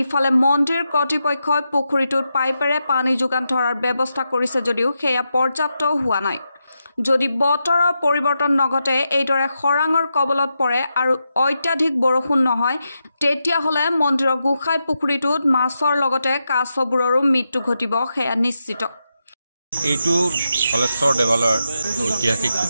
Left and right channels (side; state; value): both; inverted; correlation -0.87